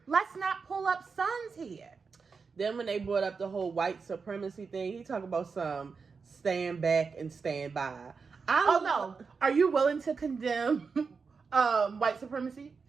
let's not pull up sons here. Then when they brought up the whole white supremacy thing, he talked about some stand back and stand by. No. Are you willing to condemn white supremacy?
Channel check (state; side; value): quieter; left; 5.1 dB